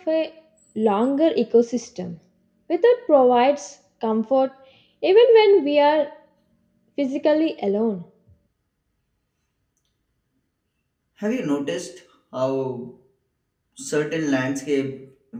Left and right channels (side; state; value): both; identical; correlation 1.00